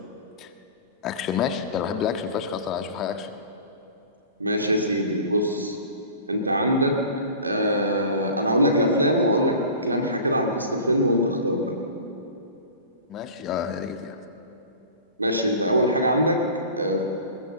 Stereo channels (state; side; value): inverted; both; correlation -0.39